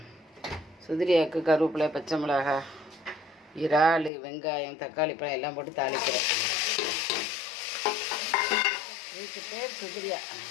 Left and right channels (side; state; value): right; drops out; at 4.1 s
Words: சுதிரியாக்கு கருவேப்பிலை, பச்சை மிளகா, இறால், வெங்காயம், தக்காளி பழம் எல்லாம் போட்டு தாளிக்கிறேன். இதுக்கு பேர் சுதிரியா.